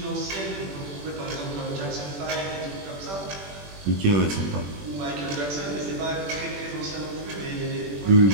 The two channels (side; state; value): left; late; 21 ms